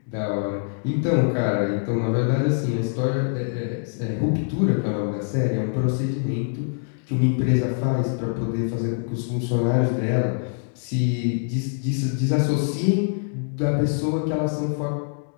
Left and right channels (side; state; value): right; silent; digital silence